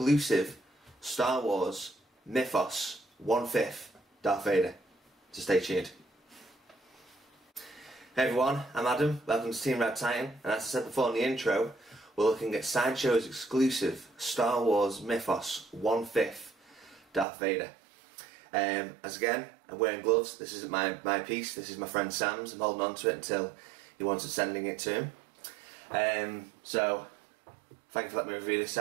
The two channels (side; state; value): left; drops out; at 17.2 s